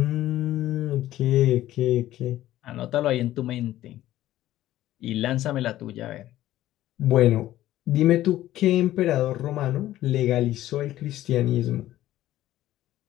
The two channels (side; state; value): right; quieter; 14.2 dB